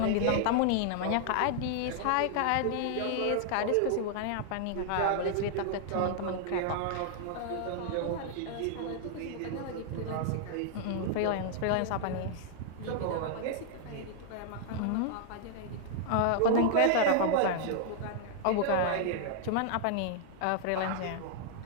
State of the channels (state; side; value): different; both; correlation -0.01